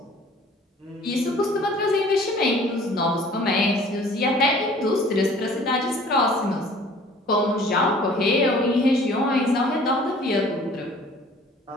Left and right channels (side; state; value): both; normal; correlation 0.51